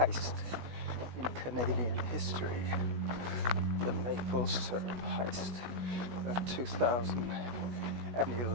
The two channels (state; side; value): late; left; 17 ms